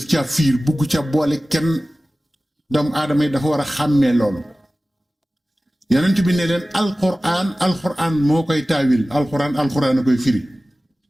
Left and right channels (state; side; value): normal; both; correlation 0.97